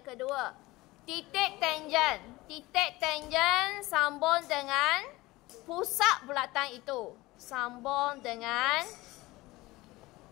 kedua, titik tangent. Titik tangent sambung dengan pusat bulatan itu. Sambung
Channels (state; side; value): quieter; right; 19.9 dB